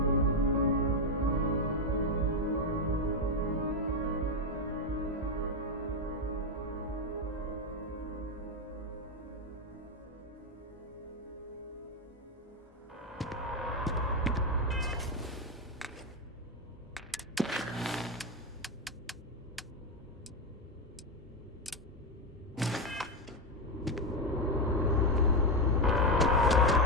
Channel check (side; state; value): both; normal; correlation 0.07